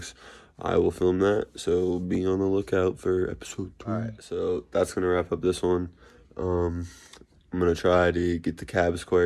I will film that, so be on the lookout for episode 3. Alright, so that's gonna wrap up this one. I'm gonna try to get the cab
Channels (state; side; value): identical; both; correlation 1.00